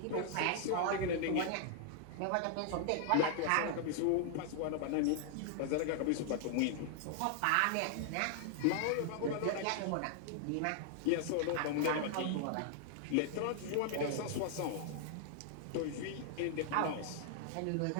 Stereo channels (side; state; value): both; different; correlation 0.00